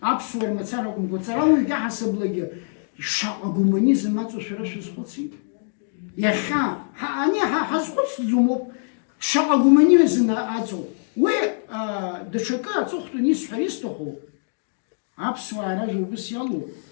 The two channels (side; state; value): right; silent; digital silence